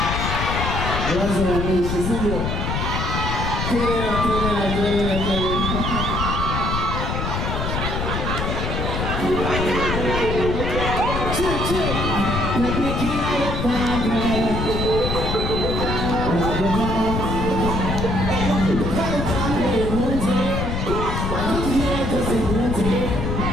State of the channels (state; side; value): noise; left; rumble, 2 dB below the sound